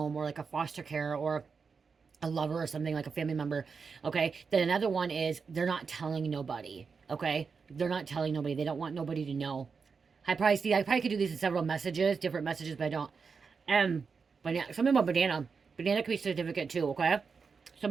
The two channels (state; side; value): quieter; left; 5.3 dB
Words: or like a foster care, or a lover, or something, like a family member. Okay, then another one is they're not telling nobody. Okay, they're not telling nobody. They don't want nobody to know. I probably could do these in several messages, different messages, but I don't. But something about banana. Banana could be significant too. Okay.